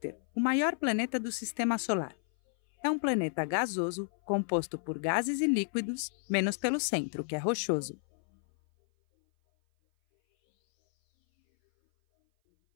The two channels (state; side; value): silent; right; 57 dB below the other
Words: o maior planeta do sistema solar. É um planeta gasoso, composto por gases e líquidos, menos pelo centro, que é rochoso.